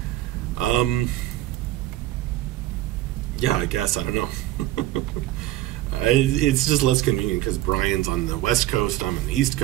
Yeah, I guess, I don't know. It's just less convenient because Brian's on the West Coast, I'm on the East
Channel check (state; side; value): quieter; left; 15.3 dB